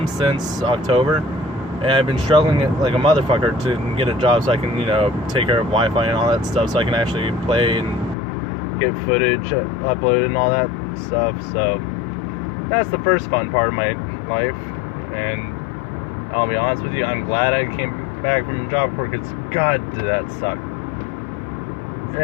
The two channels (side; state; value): right; drops out; at 8.2 s